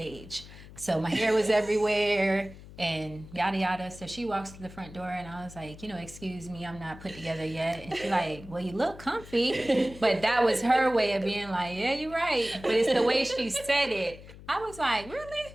So my hair was everywhere and yada, yada. So she walks to the front door and I was like, excuse me, I'm not put together yet. And she's like, well, you look comfy. But that was her way of being like, yeah, you're right. But it's the way she said it. I was like,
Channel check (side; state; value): left; noise; hum, 17 dB below the sound